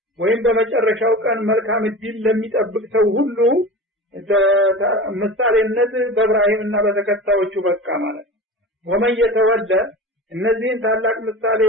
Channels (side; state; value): both; normal; correlation 0.32